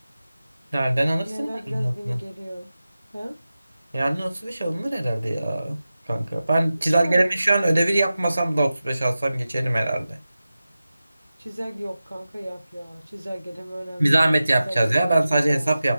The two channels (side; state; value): both; inverted; correlation -0.94